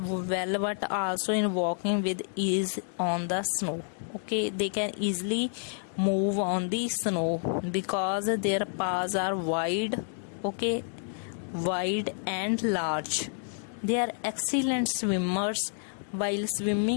but also in walking with ease on the snow. Okay, they can easily move on the snow because their paws are wide. Okay, wide and large. They are excellent swimmers. While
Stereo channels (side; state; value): right; silent; 58 dB below the other